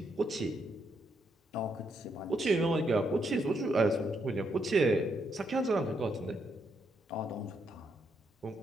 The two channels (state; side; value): normal; both; correlation 0.77